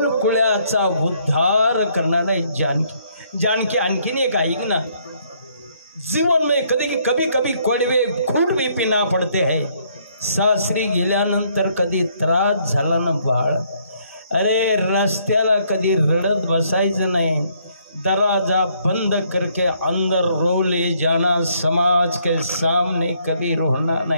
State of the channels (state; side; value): inverted; both; correlation -0.68